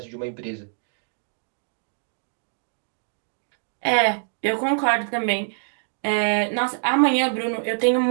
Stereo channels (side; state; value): left; silent; digital silence